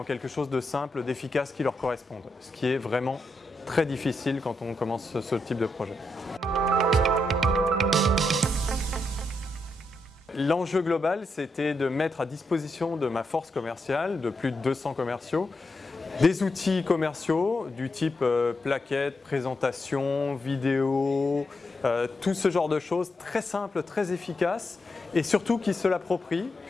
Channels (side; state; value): both; normal; correlation 0.83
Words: quelque chose de simple, d'efficace qui leur corresponde, ce qui est vraiment très difficile quand on commence ce type de projet. L'enjeu global, c'était de mettre à disposition de ma force commerciale, de plus de 200 commerciaux, des outils commerciaux du type plaquettes, présentation, vidéo, tout ce genre de choses très simples, très efficaces et surtout qui se l'approprient,